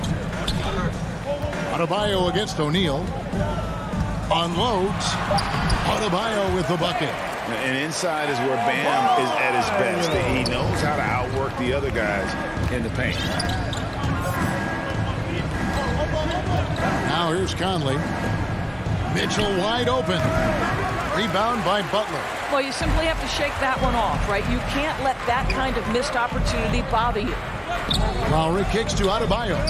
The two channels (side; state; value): both; identical; correlation 1.00